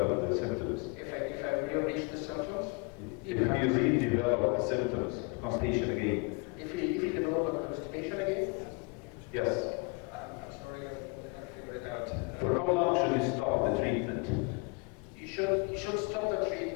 the symptoms? If I reach the symptoms? If you redevelop the symptoms of constipation again? If you develop a constipation again? Yes. I'm sorry, I did not figure it out. For how long should you stop the treatment? You should stop the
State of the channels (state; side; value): quieter; right; 30.6 dB